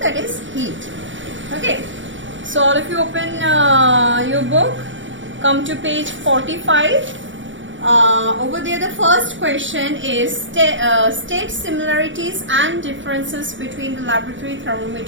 that is heat. Okay, so all of you open your book, come to page 45. Over there the first question is state similarities and differences between the laboratory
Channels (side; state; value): left; late; 0.55 ms